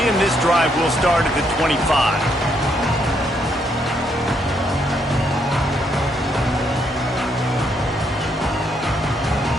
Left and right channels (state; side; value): normal; both; correlation 0.74